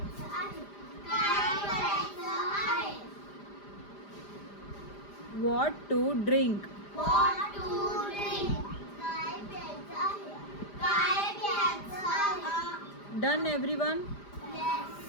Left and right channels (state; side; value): late; right; 5.0 ms